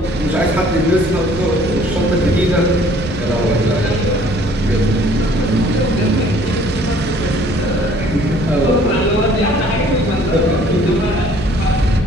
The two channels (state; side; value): noise; right; hum, 12 dB below the sound